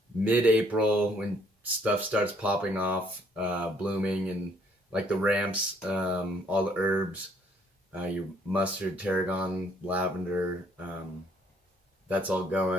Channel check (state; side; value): normal; both; correlation 0.65